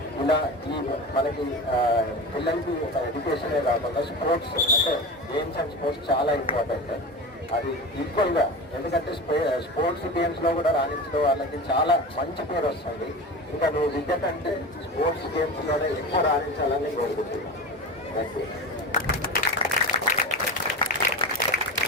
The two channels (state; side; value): normal; both; correlation 0.28